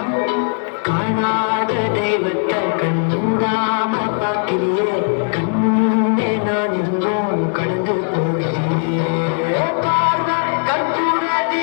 காணாத தெய்வத்தை கண் மூடாம பார்க்கிறியே கண்ணே நான் இருந்தோம் கடந்து போகிறேன் பார்வை கற்பூர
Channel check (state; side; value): silent; right; 57 dB below the other